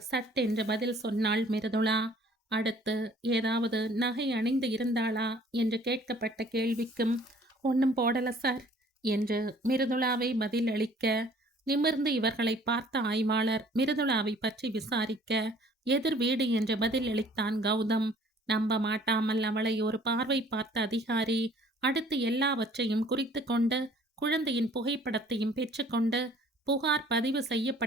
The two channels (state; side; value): normal; both; correlation 0.55